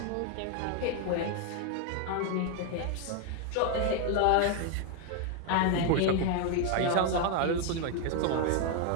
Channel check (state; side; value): different; both; correlation 0.01